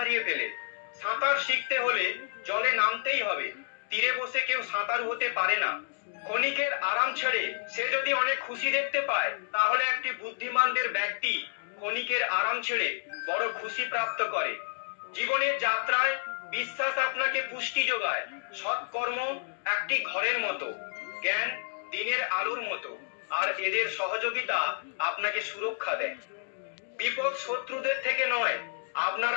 ফেলে। সাঁতার শিখতে হলে জলে নামতেই হবে। তীরে বসে কেউ সাঁতারু হতে পারে না। ক্ষণিকের আরাম ছেড়ে সে যদি অনেক খুশি দেখতে পায়, তাহলে একটি বুদ্ধিমানদের ব্যক্তি ক্ষণিকের আরাম ছেড়ে বড় খুশি প্রাপ্ত করে। জীবনের যাত্রায় বিশ্বাস আপনাকে পুষ্টি যোগায়। সৎকর্ম একটি ঘরের মতো, জ্ঞান দিনের আলোর মতো, আর এদের সহযোগিতা আপনাকে সুরক্ষা দেয়। বিপদ শত্রুদের থেকে নয়, আপনার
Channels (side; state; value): right; silent; 58 dB below the other